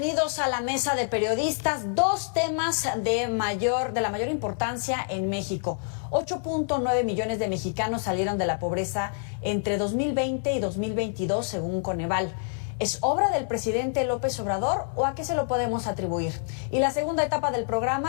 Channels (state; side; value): silent; right; 60 dB below the other